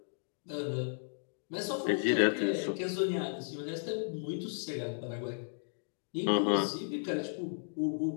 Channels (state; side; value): silent; right; digital silence